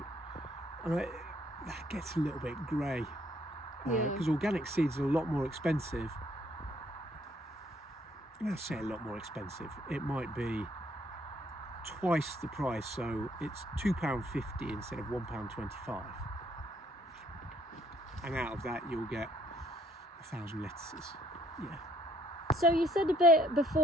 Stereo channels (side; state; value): both; normal; correlation 0.65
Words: that gets a little bit grey. Because organic seeds are a lot more expensive. I say a lot more expensive. It might be twice the price, so it's £2.50 instead of £1.25. And out of that, you'll get 1,000 lettuces. Yeah. So you said a bit